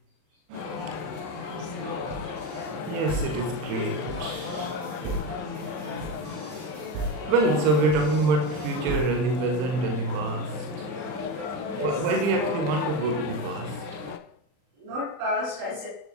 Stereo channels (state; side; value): late; left; 39 ms